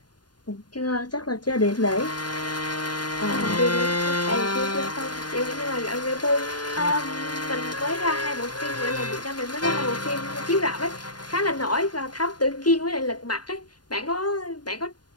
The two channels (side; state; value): right; late; 0.70 ms